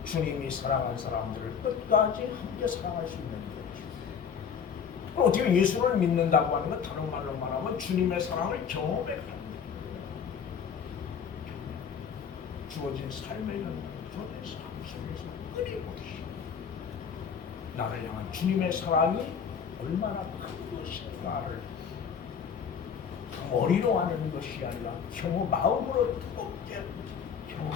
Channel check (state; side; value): quieter; right; 7.1 dB